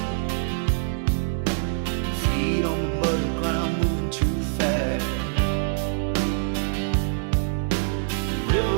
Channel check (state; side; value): silent; left; digital silence